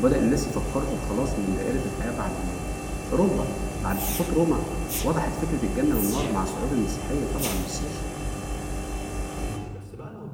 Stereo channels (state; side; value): identical; both; correlation 1.00